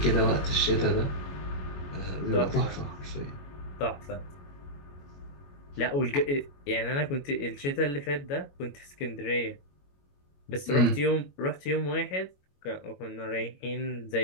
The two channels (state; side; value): late; right; 21 ms